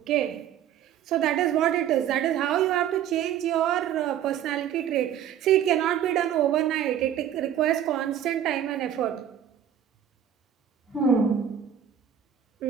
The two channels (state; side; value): quieter; left; 9.8 dB